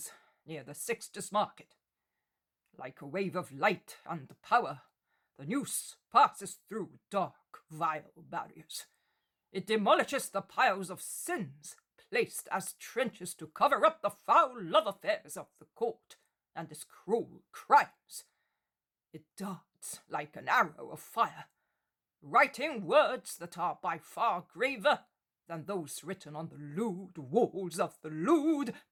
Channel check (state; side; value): identical; both; correlation 1.00